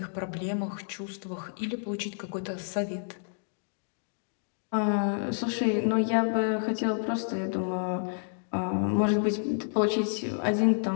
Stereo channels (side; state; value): right; silent; digital silence